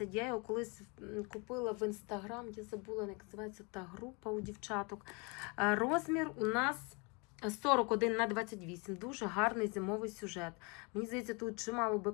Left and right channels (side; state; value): right; quieter; 30.8 dB